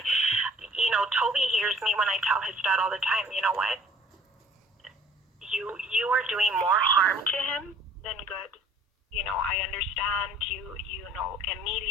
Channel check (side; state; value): both; normal; correlation 0.53